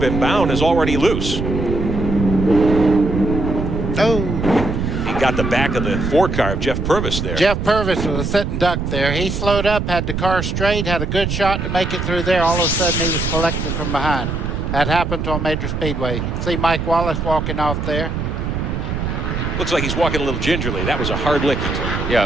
him, Bound is already loose. Oh. He got the back of the 4 car of Jeff Purvis there. Jeff Purvis was a sitting duck there. He slowed up, had the car straight, had a good shot to make it through there. All of a sudden, he was collected from behind. That happened on Major Speedway. You see Mike Wallace walking off there. Looks like he's walking a little gingerly. That was a hard lick he took. Yeah,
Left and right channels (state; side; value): noise; right; rumble, 3 dB below the sound